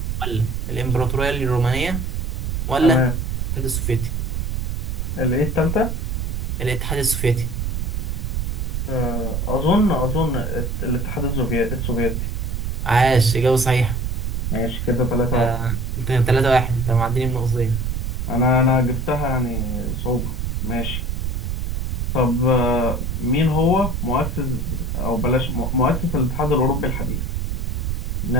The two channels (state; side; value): noise; right; rumble, 1 dB below the sound